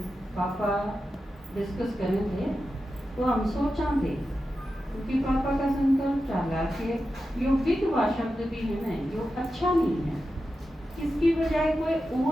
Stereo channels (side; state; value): both; normal; correlation 0.91